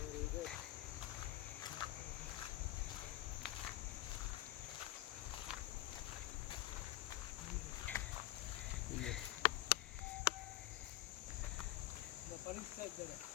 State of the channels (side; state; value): right; quieter; 15.8 dB